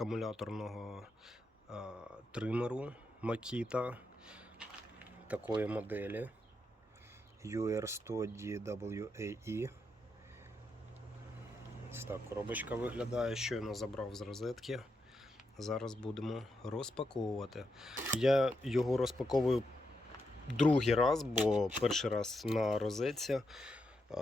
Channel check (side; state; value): both; normal; correlation 0.83